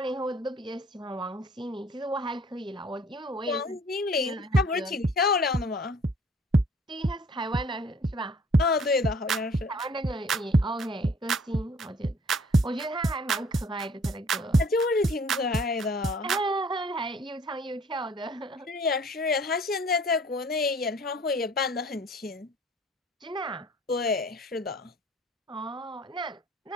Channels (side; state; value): both; normal; correlation 0.55